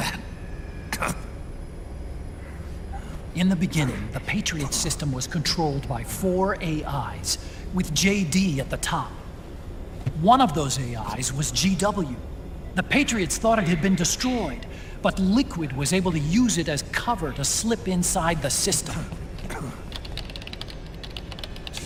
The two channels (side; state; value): both; identical; correlation 1.00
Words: In the beginning, the Patriots system was controlled by 4 AIs, with JD at the top. One of those AIs was GW. The Patriots thought it had been destroyed, but Liquid was able to use it as cover to slip inside the system.